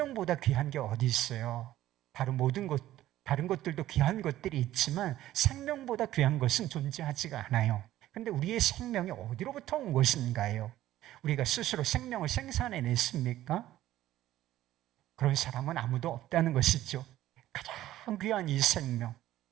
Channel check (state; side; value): quieter; left; 14.1 dB